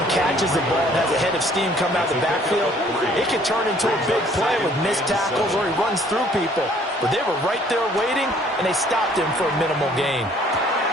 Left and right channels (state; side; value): normal; both; correlation 0.59